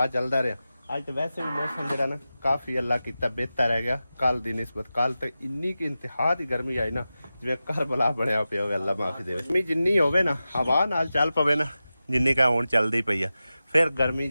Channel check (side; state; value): both; inverted; correlation -0.94